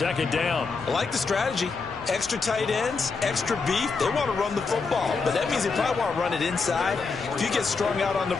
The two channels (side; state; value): right; quieter; 4.6 dB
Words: down. I like the strategy. Extra tight ends, extra beef. They want to run the football, but that means they probably want to run it inside. If you get strung out on the